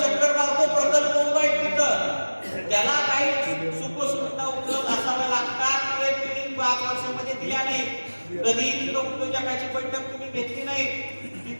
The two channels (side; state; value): both; inverted; correlation -1.00